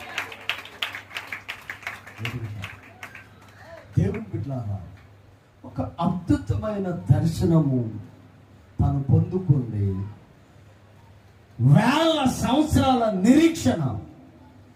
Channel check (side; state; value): both; identical; correlation 1.00